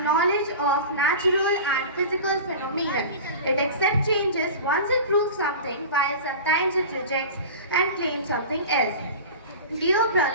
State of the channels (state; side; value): inverted; both; correlation -0.33